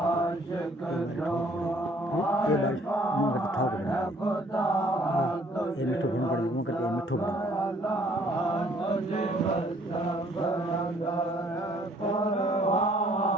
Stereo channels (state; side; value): normal; both; correlation 0.61